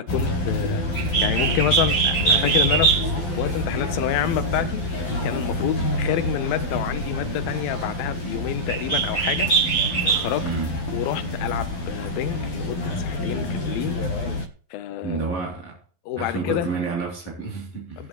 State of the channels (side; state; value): right; late; 12 ms